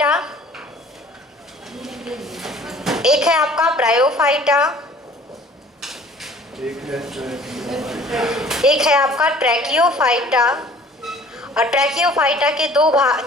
एक है आपका ब्रायोफाइटा, एक है आपका ट्रैकियोफाइटा, और ट्रैकियोफाइटा के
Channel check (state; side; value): normal; both; correlation 0.51